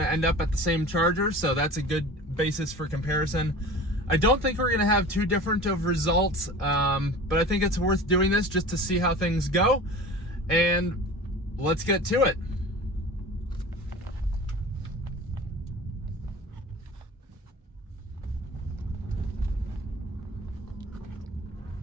to end up at the same charger, so that's a good basis for comparison. I don't think we're going to have too different of results, but I think it's worth doing this just to see how things go. And let's get to it.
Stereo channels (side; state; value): both; normal; correlation 0.37